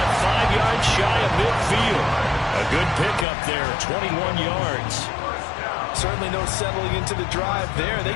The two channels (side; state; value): right; drops out; at 3.2 s